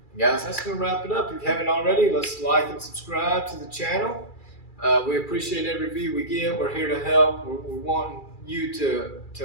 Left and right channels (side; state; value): right; late; 2.3 ms